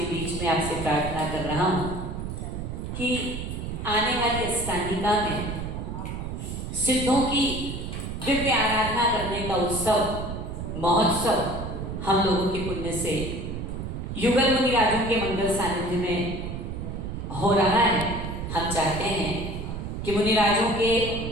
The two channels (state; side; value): noise; right; rumble, 6 dB below the sound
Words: बीच में आपसे प्रार्थना कर रहा हूँ कि आने वाली अष्टांगिका में सिद्धों की दिव्य आराधना करने का उत्सव महोत्सव हम लोगों के पुण्य से युगल मुनि राजों के मंगल सानिध्य में हो रहा है। हम चाहते हैं कि मुनि राजों के